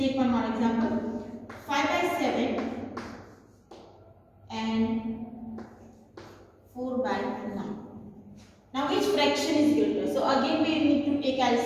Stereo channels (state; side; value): identical; both; correlation 1.00